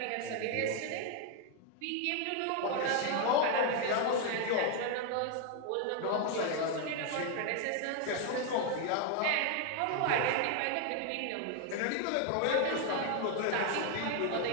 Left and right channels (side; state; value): both; different; correlation 0.00